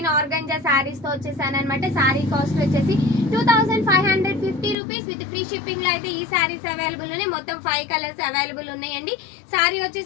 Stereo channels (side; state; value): right; drops out; at 4.8 s